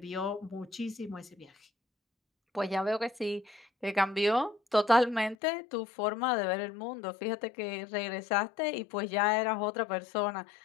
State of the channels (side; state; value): right; drops out; at 5.4 s